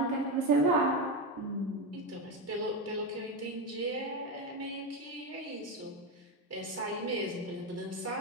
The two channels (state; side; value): normal; both; correlation 0.13